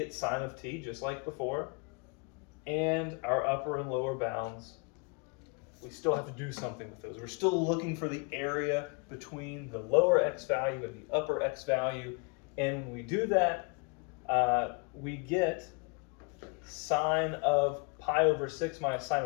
sine of t, just like before, and our upper and lower bounds we still have to do something with those. We're still looking for the area between the lower x value and the upper x value. And when we do that, we get sine of pi over 6 minus sine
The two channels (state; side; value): quieter; right; 33.9 dB